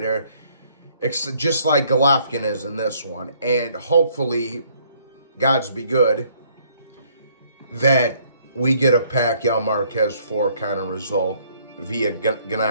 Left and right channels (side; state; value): both; inverted; correlation -0.64